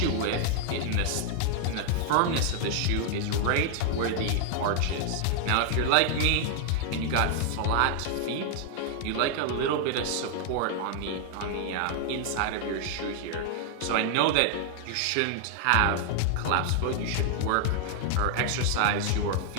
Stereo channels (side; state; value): both; different; correlation 0.00